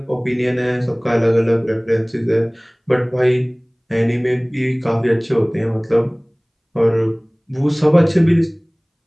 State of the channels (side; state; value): both; identical; correlation 1.00